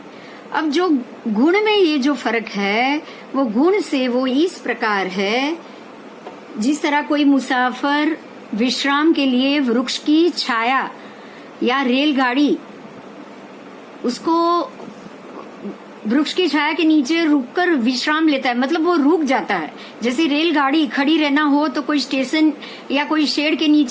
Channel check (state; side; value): identical; both; correlation 1.00